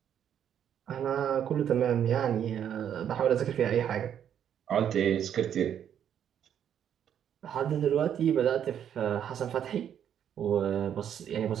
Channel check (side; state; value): left; quieter; 9.3 dB